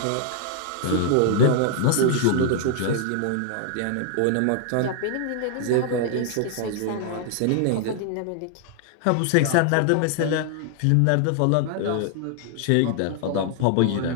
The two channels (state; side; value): different; both; correlation 0.00